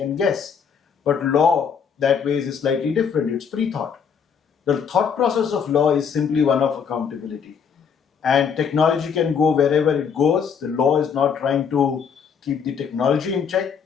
guess. But law that way is slightly different. It's pre-thought. The thought process of law is simply one of accountability. And technology can go wherever it goes. The law is not trying to keep the technology in check.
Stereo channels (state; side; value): quieter; right; 6.8 dB